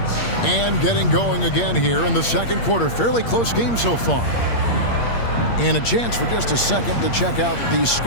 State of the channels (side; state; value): right; late; 8.6 ms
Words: And getting going again here in the second quarter. Fairly close game so far. And a chance for just a second to check out the